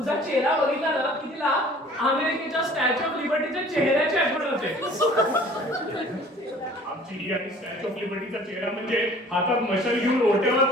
चेहरा बघितला ना की तिला अमेरिकेच्या स्टॅच्यू ऑफ लिबर्टीच्या चेहऱ्याची आठवण होते. आमची ही आणि स्टॅच्यू ऑफ लिबर्टीचा चेहरा म्हणजे हातात मशाल घेऊन ओट्यावर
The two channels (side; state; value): both; normal; correlation 0.50